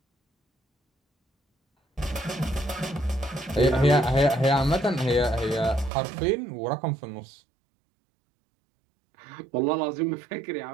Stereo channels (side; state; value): left; drops out; at 5.9 s